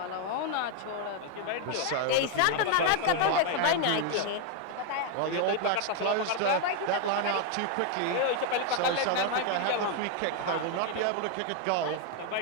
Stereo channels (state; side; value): different; both; correlation 0.01